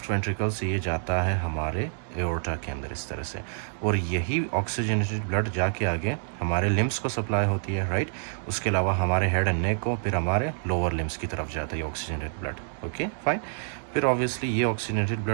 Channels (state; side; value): silent; left; digital silence